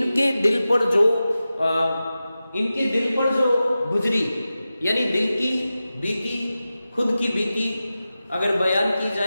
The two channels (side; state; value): both; inverted; correlation -0.94